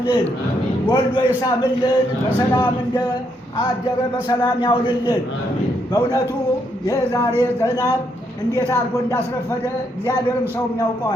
ወልዶ ይሳምልን፣ በሰላም እንደ አደረ በሰላም ያውልልን። በእውነቱ የዛሬ ዝናብ እንዴት አድርጎ እንዳስረፈደ እግዚአብሔርም ሰውም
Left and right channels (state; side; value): normal; both; correlation 0.76